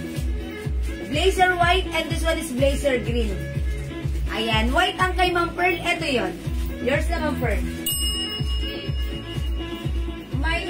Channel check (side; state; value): both; identical; correlation 1.00